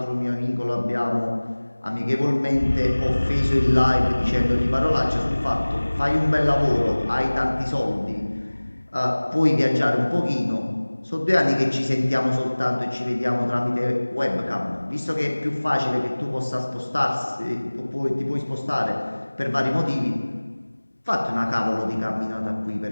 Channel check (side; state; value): both; inverted; correlation -1.00